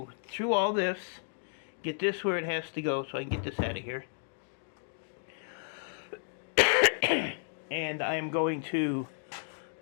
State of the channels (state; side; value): silent; right; digital silence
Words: through all this, get this where it has to go so I can get this out of here. And I am going to